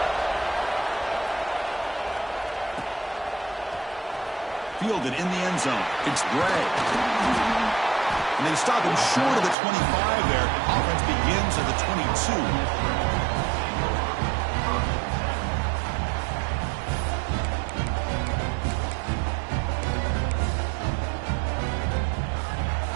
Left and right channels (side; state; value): left; drops out; at 9.6 s